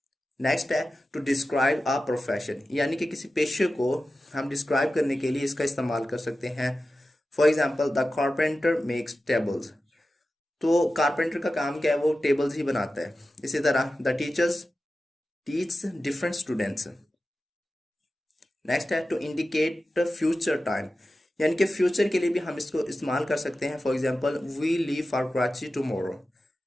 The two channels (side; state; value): both; normal; correlation 0.93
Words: Next है टू डिस्क्राइब अ प्रोफेशन, यानी कि किसी पेशे को हम डिस्क्राइब करने के लिए इसका इस्तेमाल कर सकते हैं। For example, the carpenter makes tables, तो कारपेंटर का काम क्या है, वो टेबल्स ही बनाता है। इसी तरह the teachers teach different students. Next है टू इंडिकेट फ्यूचर टाइम, यानी कि फ्यूचर के लिए भी हम इसको इस्तेमाल कर सकते हैं। For example, we leave for Karachi tomorrow,